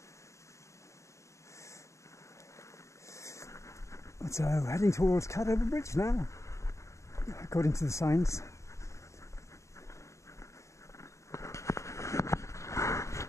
So heading towards Cadover Bridge now, according to the signs.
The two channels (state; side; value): late; right; 0.14 ms